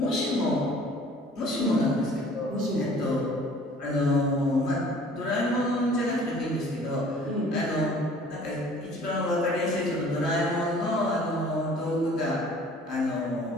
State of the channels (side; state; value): both; normal; correlation 0.51